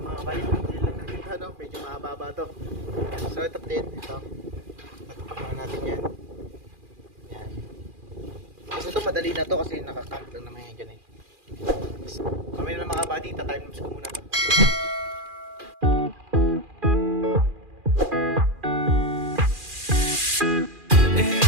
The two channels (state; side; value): late; left; 2.4 ms